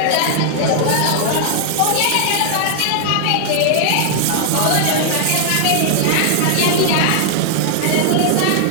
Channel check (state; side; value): different; both; correlation 0.00